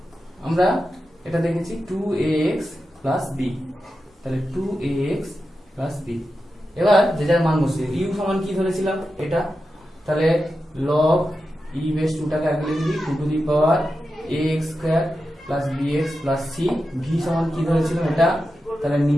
আমরা এটা দেখেছি 2ax প্লাস b, তাহলে 2ax প্লাস b। এবার যে যার মান বসিয়ে u সমান কি ধরেছিলাম এটা, তাহলে log ই বেস 2টাকে আগে লিখে দিই 2 to the power ax square plus bx plus c, v সমান কি ধরেছিলাম এটা, তাহলে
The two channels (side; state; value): both; normal; correlation 0.90